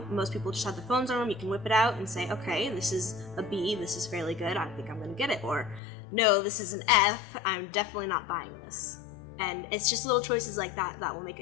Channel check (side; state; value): right; drops out; at 5.8 s